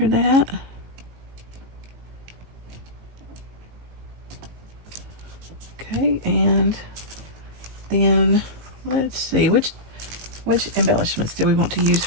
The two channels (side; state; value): left; late; 19 ms